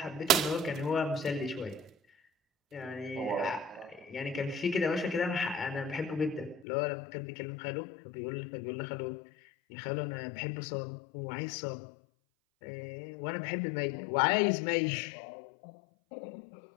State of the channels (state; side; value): drops out; right; at 6.7 s